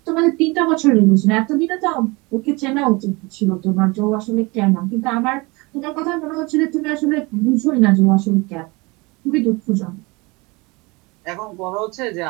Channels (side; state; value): left; quieter; 25.5 dB